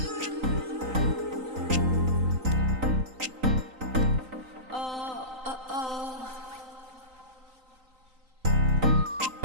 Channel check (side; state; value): left; late; 3.9 ms